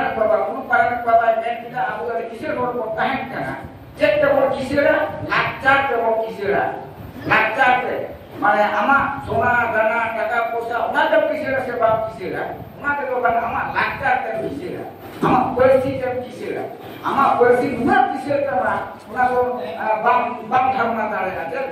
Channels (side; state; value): both; identical; correlation 1.00